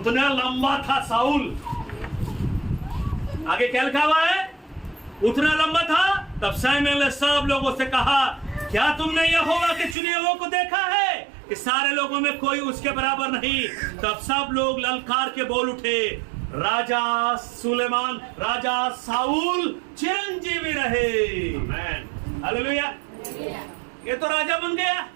लंबा था साउल. आगे क्या लिखा हुआ है? उतना लंबा था. तब शमूएल ने सब लोगों से कहा क्या तुमने यहोवा के चुने हुए को देखा है कि सारे लोगों में कोई उसके बराबर नहीं? तब सब लोग ललकार के बोल उठे राजा सुलेमान, राजा साउल चिरंजीवी रहे. हालेलुया. ये तो राजा बन गया,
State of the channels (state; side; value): drops out; left; at 10.0 s